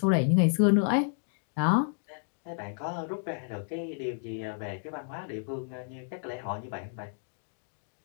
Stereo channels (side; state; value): right; silent; digital silence